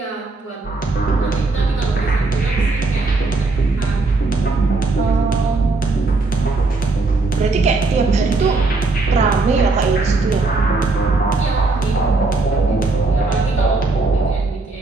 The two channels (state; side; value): quieter; left; 3.5 dB